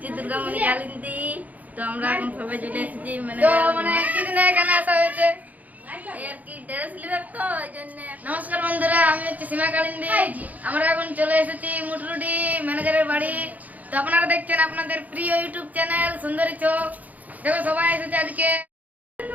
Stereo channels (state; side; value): late; left; 0.078 ms